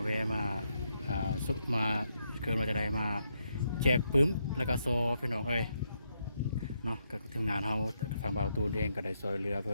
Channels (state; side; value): inverted; both; correlation -0.80